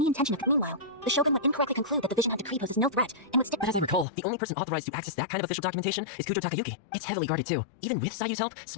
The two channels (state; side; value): drops out; right; at 4.0 s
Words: intention of... Meanwhile, the Shogun would incorrectly conclude that the Vision Hunt Decree poses no threat and would stick... But as I recall, the only person authorized to access that kind of official documentation is Kujo Takayuki. It's heavily guarded too. Even with Sayu's help,